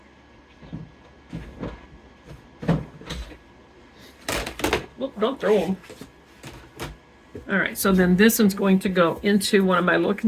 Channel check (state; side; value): identical; both; correlation 1.00